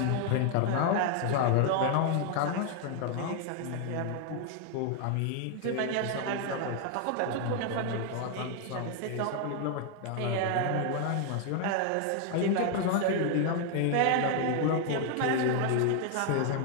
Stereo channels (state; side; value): different; both; correlation 0.01